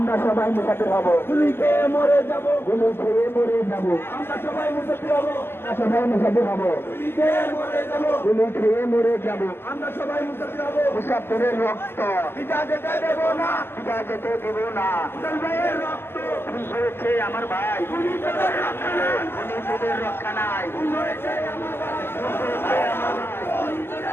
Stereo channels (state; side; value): late; right; 0.11 ms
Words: সবাই মুসাফির হব, গুলি খেয়ে মরে যাব, গুলি খেয়ে মরে যাব, আমরা সবাই মুসাফির হব, আমরা সবাই মুসাফির হব, গুলি খেয়ে মরে যাব, গুলি খেয়ে মরে যাব। আমরা সবাই মুসাফির হব, মুসাফিরের রক্ত পিতা যেতে দেব না, পিতা যেতে দেব না। হাসান ভাইয়ের রক্ত, খুন হয়েছে আমার ভাই, গুলি তোদের রক্ষা নাই, খুনি তোদের রক্ষা নাই। খুন হয়েছে আমার ভাই, খুন হয়েছে আমার ভাই। গুলি